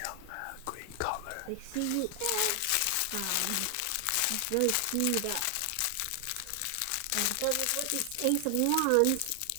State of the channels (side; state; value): both; different; correlation 0.00